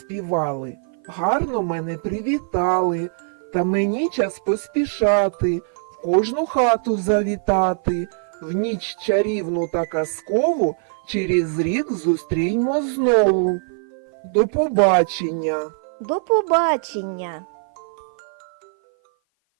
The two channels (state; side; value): silent; left; 55 dB below the other